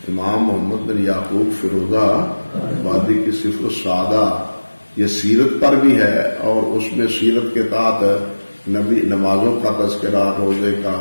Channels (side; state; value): both; inverted; correlation -1.00